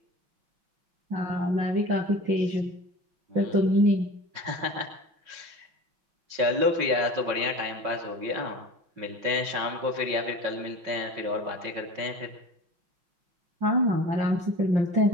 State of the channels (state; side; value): late; left; 5.5 ms